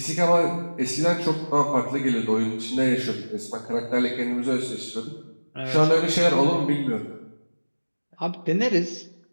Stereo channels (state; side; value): inverted; both; correlation -1.00